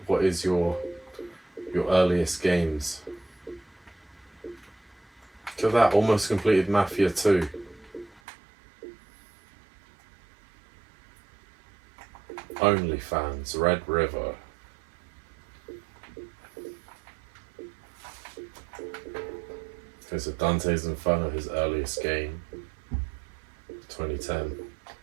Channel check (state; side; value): drops out; left; at 8.2 s